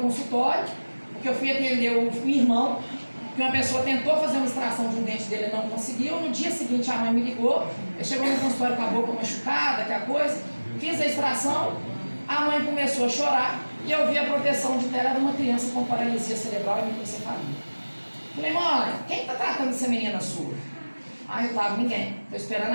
porque eu fui atender o irmão, que uma pessoa tentou fazer uma extração de um dente dele e não conseguiu. No dia seguinte a mãe me ligou, ele chegou no consultório com a boca machucada, aquela coisa, fiz a extração, a mãe começou a chorar e eu vi a proteção de tela de uma criança com paralisia cerebral e microcefalia. Falei, mãe, quem está tratando essa menina sua? Ah, eu estava, ninguém. Estou esperando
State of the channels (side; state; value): both; inverted; correlation -1.00